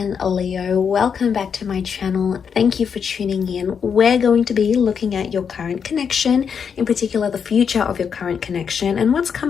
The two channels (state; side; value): quieter; right; 6.8 dB